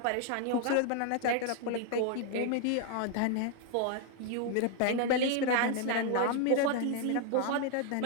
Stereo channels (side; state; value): both; different; correlation 0.00